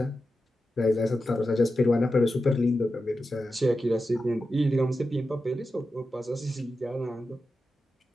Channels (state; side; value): normal; both; correlation 0.91